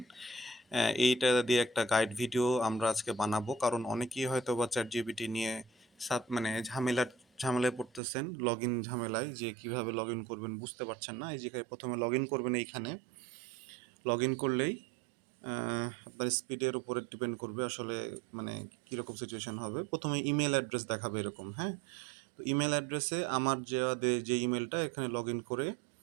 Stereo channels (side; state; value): left; drops out; at 8.0 s